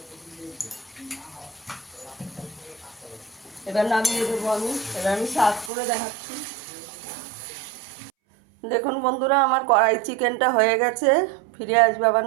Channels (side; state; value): left; drops out; at 5.7 s